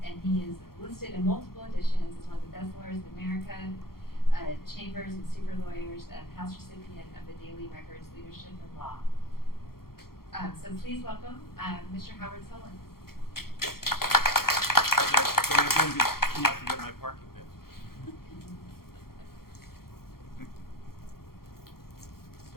is listed in multiple editions as one of the best lawyers in America, Chambers and Super Lawyers, and past recipient of the Daily Records Leadership in Law. So please welcome Mr. Howard Sollins. Can I forget my parking bit?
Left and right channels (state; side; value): late; right; 0.93 ms